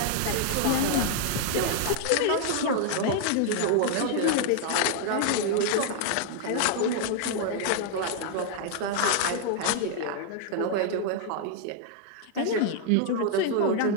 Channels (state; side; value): different; both; correlation 0.00